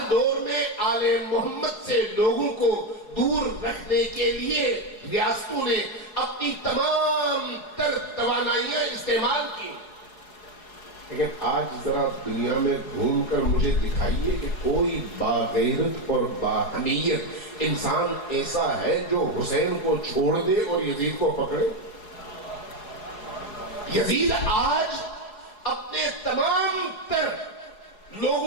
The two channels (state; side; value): late; right; 4.7 ms